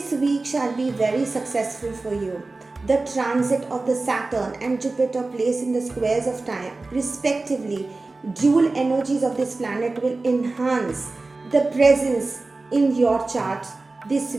week shall be very successful for you. The transit of the Saturn and Jupiter placed in the squares of time, respectively, dual energies of this planet will enhance the presence in your chart this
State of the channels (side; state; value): left; quieter; 3.4 dB